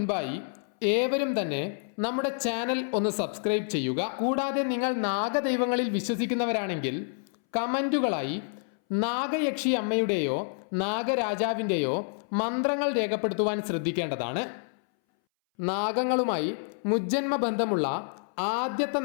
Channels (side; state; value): right; silent; 59 dB below the other